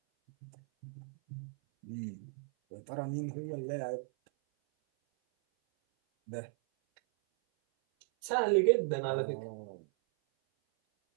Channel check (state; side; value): silent; left; 54 dB below the other